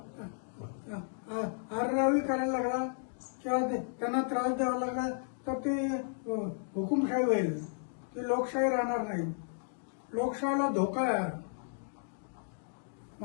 आररावी करायला लागला किंवा त्यांना त्रास द्यावा लागला तर ती हुकुमशाही होईल, ती लोकशाही राहणार नाही। लोकशाहीला धोका आहे।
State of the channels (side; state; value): right; silent; digital silence